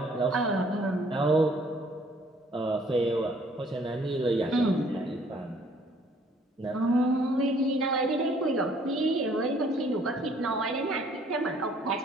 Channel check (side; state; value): both; normal; correlation 0.61